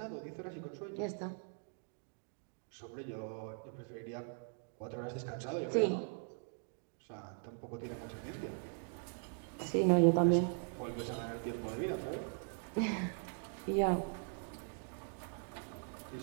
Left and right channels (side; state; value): left; silent; 51 dB below the other